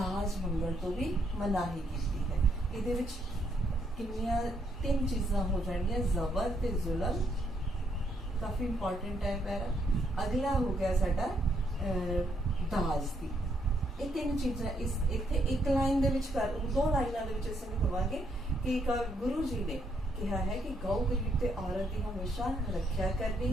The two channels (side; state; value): both; normal; correlation 0.74